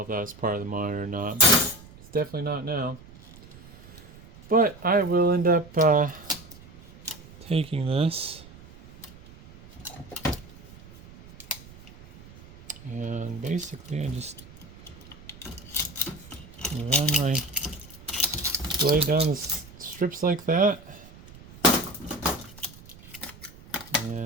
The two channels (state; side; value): noise; right; rumble, 20 dB below the sound